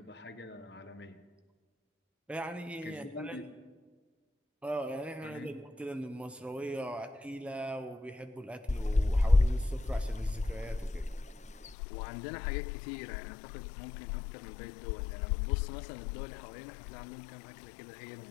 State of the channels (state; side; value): drops out; right; at 11.8 s